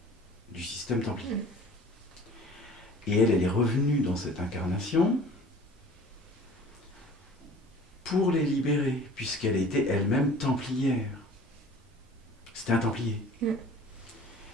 du système templier. Et elle est revenue dans cette incarnation pour les libérer, puisqu'elle était elle-même templière. C'était un templier.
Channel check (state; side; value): normal; both; correlation 0.46